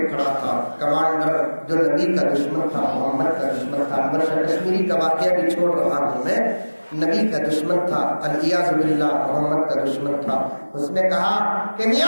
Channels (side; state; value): both; inverted; correlation -1.00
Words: کھڑا تھا. کمانڈر جو نبی کا دشمن تھا، محمد کا دشمن تھا. انور کشمیری کا واقعہ بھی چھوڑ رہا ہوں میں. نبی کا دشمن تھا، الیاذ باللہ محمد کا دشمن تھا. اس نے کہا کہ